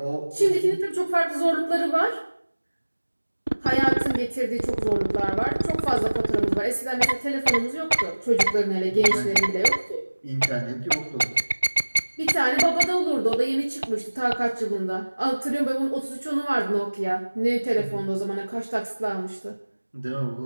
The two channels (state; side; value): inverted; both; correlation -1.00